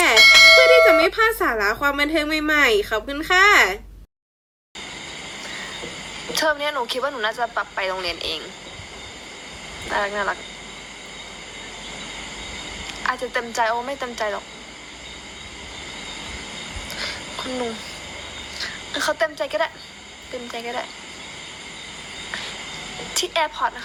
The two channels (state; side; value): identical; both; correlation 1.00